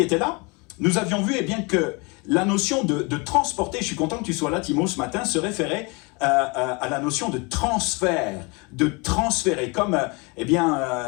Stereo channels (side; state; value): right; quieter; 29.3 dB